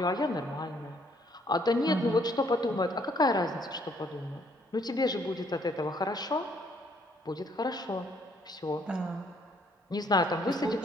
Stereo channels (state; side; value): normal; both; correlation 0.66